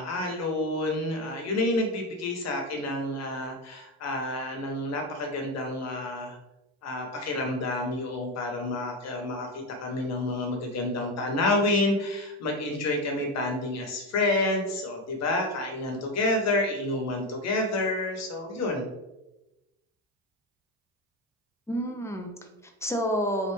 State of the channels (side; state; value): both; normal; correlation 0.15